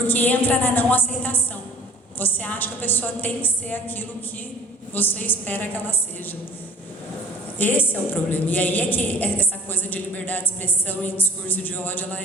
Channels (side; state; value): both; normal; correlation 0.48